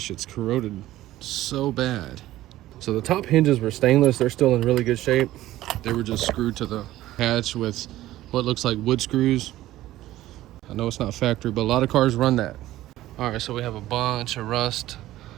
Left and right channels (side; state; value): left; quieter; 15.1 dB